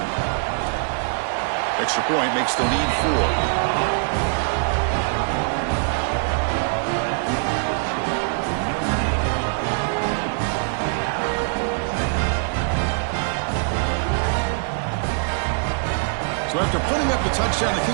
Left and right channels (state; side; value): silent; left; 56 dB below the other